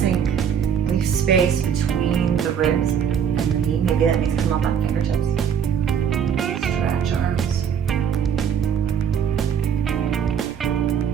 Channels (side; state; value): left; quieter; 7.6 dB